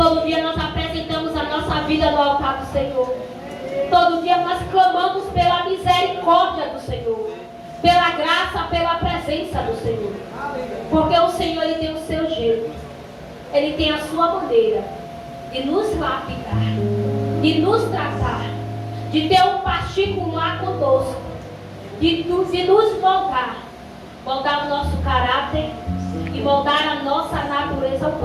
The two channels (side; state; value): both; identical; correlation 1.00